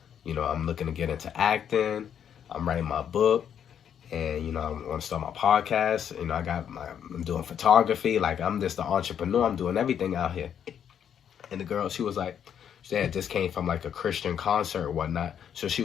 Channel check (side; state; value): right; quieter; 8.7 dB